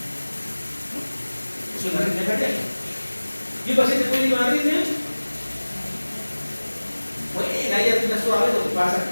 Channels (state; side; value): inverted; both; correlation -1.00